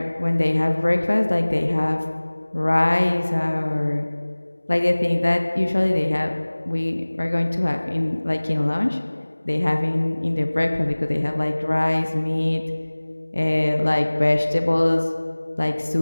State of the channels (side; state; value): both; inverted; correlation -1.00